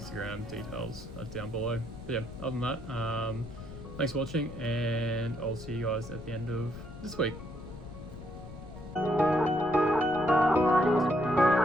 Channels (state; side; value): noise; left; rumble, 14 dB below the sound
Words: Details are down below. But yeah, other than that, thanks for watching, and I'll see you guys at the end of this week.